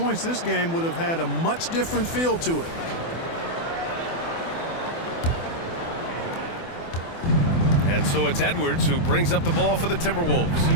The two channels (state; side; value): late; right; 24 ms